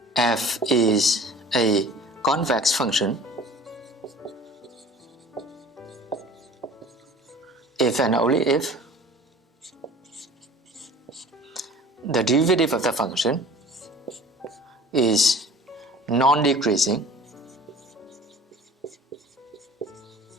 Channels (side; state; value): both; normal; correlation 0.45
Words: f is a convex function if and only if the derivative of the function is non-decreasing